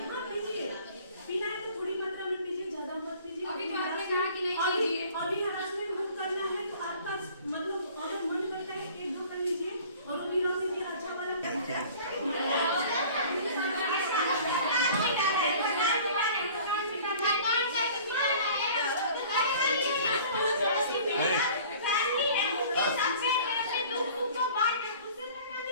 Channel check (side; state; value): both; inverted; correlation -0.48